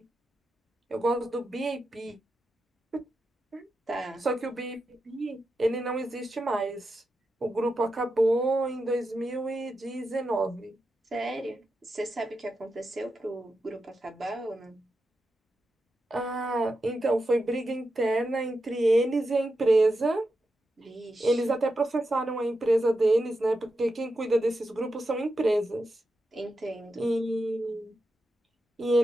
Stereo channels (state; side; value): normal; both; correlation 0.88